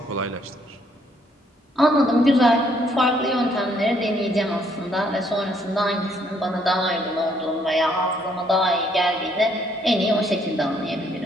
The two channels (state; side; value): normal; both; correlation 0.68